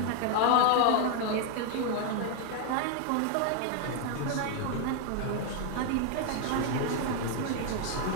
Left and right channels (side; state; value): both; different; correlation 0.01